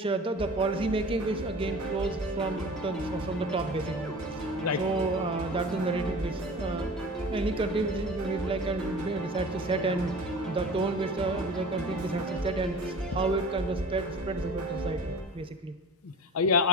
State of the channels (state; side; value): normal; both; correlation 0.39